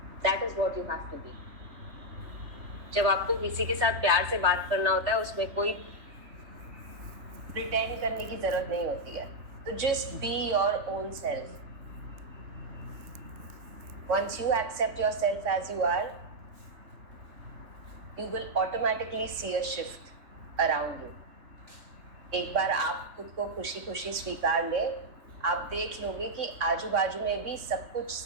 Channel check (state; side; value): late; left; 3.4 ms